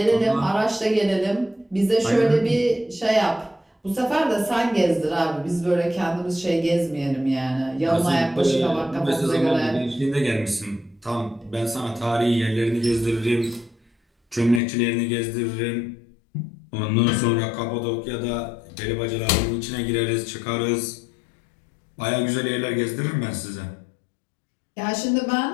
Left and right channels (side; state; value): right; drops out; at 14.6 s